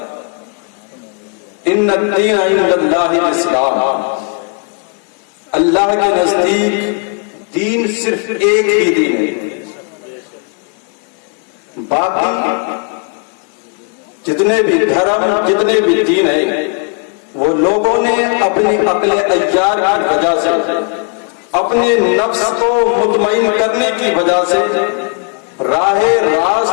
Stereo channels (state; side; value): quieter; right; 38.0 dB